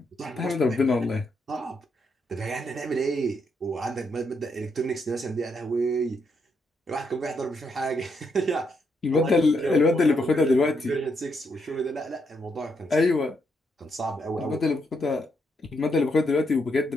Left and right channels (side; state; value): both; normal; correlation 0.78